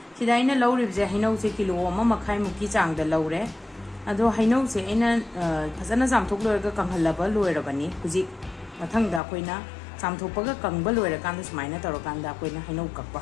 सिदा आइना लौरिबजे हैनौसे किलो अमा मखाइ मुकी चांगदा लौरे अदो हैनौसे आइना फजना जामथोक लोरगा कंहल्लबा लोइरबनी हुजि मथंगदा अखोइना जामथोकपगा कंगबा लोइरकांदा सुमाइना तौरकांदा अखोइना हैनौ कक्पा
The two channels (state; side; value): drops out; right; at 9.2 s